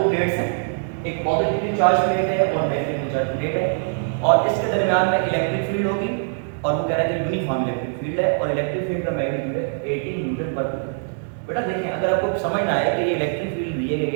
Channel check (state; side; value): silent; left; digital silence